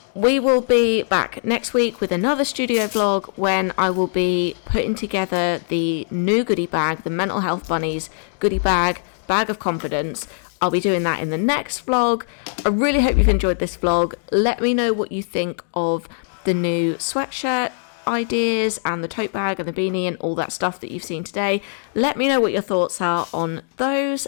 we will be back next week with another studio vlog when I will be putting together the new goodie bag, the Mental Health Bunnies goodie bag of confidence. I'll be doing that in the next vlog. I really hope you've enjoyed this vlog. Let me know what you think of the new sweatshirt ideas and the tote bag and the beanie and all that stuff that you've seen today. Let me know what your thoughts are on those,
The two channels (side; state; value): right; silent; digital silence